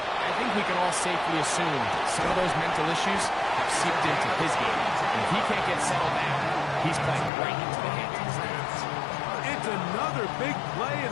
think we can all safely assume some of those mental issues have seeped into his game. And if he can't get settled down, he's playing right into the hands of his defense. It's another big play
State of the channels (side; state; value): right; drops out; at 7.3 s